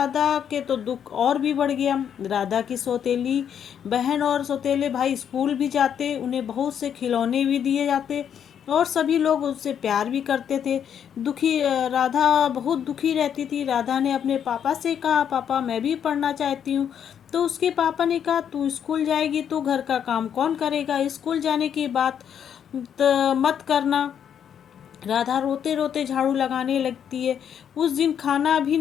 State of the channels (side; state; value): right; quieter; 8.6 dB